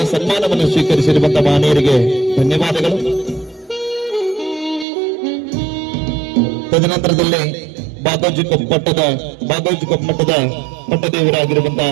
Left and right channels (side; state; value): left; drops out; at 4.9 s